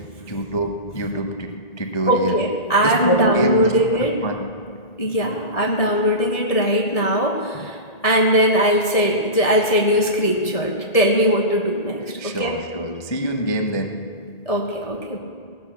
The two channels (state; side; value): late; right; 1.7 ms